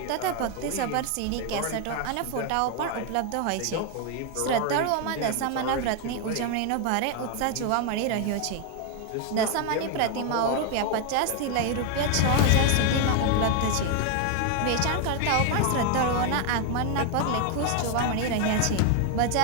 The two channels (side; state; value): both; different; correlation 0.01